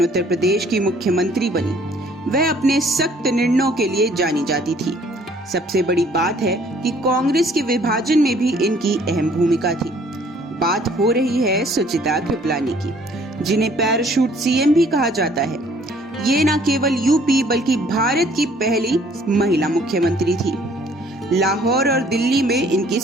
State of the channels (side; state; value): both; normal; correlation 0.59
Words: उत्तर प्रदेश की मुख्यमंत्री बनी। वह अपने सख्त निर्णयों के लिए जानी जाती थी। सबसे बड़ी बात है कि कांग्रेस के विभाजन में भी इनकी अहम भूमिका थी। बात हो रही है सुचिता कृपलानी की, जिन्हें पैराशूट सीएम भी कहा जाता है। ये न केवल यूपी बल्कि भारत की पहली महिला मुख्यमंत्री थी। लाहौर और दिल्ली में इनकी